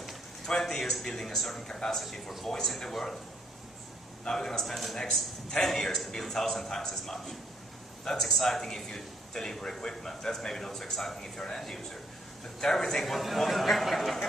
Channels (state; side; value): normal; both; correlation 0.68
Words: 20 years building a certain capacity for voice in the world. Now we're going to spend the next 10 years to build 1,000 times as much. That's exciting if you deliver equipment. That's maybe not so exciting if you're an end user. But everything,